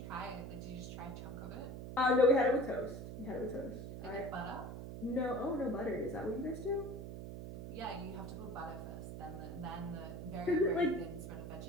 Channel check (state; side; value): noise; right; hum, 8 dB below the sound